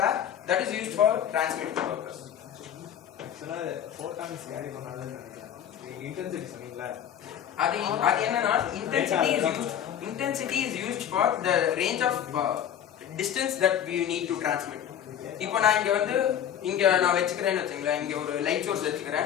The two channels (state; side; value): quieter; right; 9.8 dB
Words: where that is used for transmitting purpose. ஆக்சுவலா ஃபோட்டான்ஸ் கேரி பண்ணாதுன்னு நினைக்கிறேன். இன்டென்சிட்டி சொன்னீங்களா? அது என்னன்னா intensity is used for the range of distance that we need to transmit. இப்போ நான் இங்க நான் வச்சுக்கிறேன்னு வச்சுங்களேன், இங்க ஒரு லைட் சோர்ஸ்